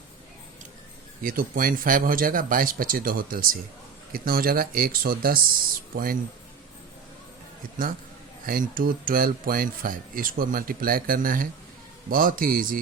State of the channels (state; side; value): quieter; left; 6.0 dB